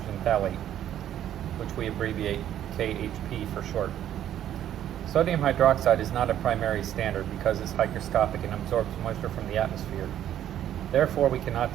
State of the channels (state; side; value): quieter; left; 11.1 dB